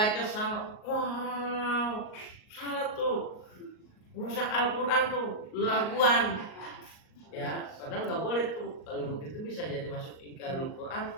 salah, wow, salah tuh, rusak Al-Quran tuh, laguan, ya, padahal nggak boleh tuh. Kalau begitu bisa jadi masuk ingkarul Quran,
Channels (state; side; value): late; right; 38 ms